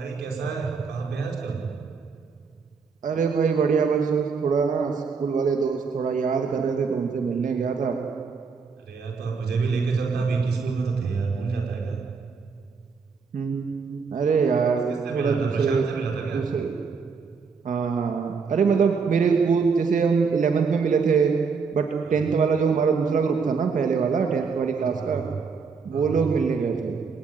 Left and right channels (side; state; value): left; quieter; 5.2 dB